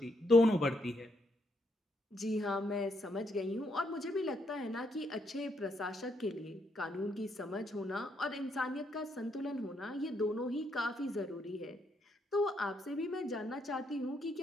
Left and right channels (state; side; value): normal; both; correlation 0.76